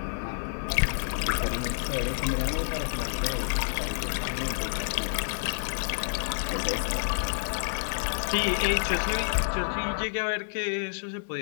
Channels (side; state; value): right; silent; digital silence